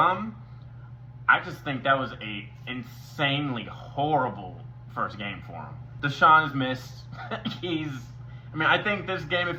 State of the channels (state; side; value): identical; both; correlation 1.00